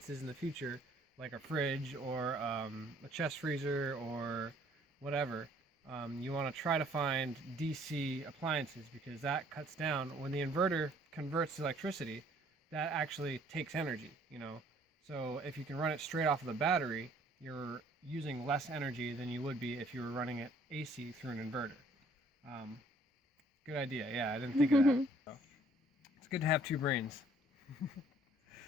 in the future, like a fridge or a chest freezer or whatever, you want to try to find DC appliances, because that cuts down, when the inverter converts electricity, that actually takes energy, So if you can run it straight off of the battery, you're using less energy than you would be if you were running it AC through an inverter. Good idea. Yeah, I didn't think of that. So, it's good to have two brains.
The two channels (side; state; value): both; normal; correlation 0.59